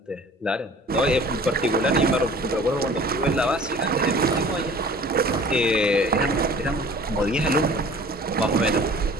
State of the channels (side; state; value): both; normal; correlation 0.47